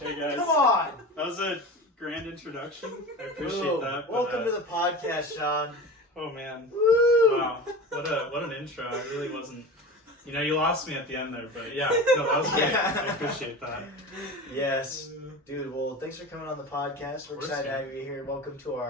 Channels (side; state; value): both; normal; correlation 0.31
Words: Hey guys. come on. That was a grand introduction. I appreciate that. But, Welcome to the podcast, Sean. Oh man. Woo! Wow. What an intro. I really wasn't. You lost me at the end there, but yeah, no, that was great. I appreciate that. Yes, dude. Well, thanks for coming on the podcast. We're Of course, excited to man. have you here. Welcome to